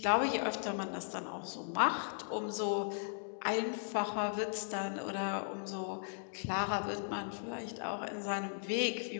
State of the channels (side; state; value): right; silent; digital silence